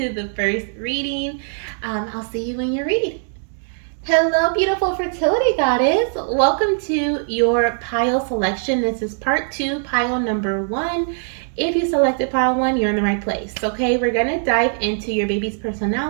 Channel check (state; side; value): silent; left; 63 dB below the other